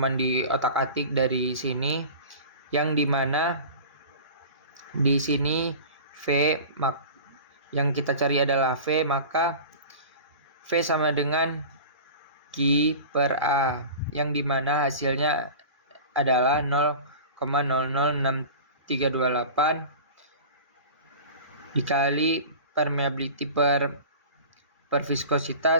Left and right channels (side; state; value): both; inverted; correlation -0.37